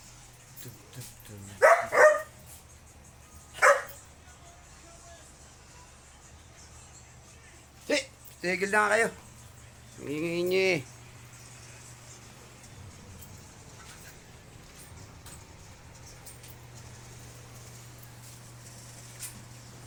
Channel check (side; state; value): both; identical; correlation 1.00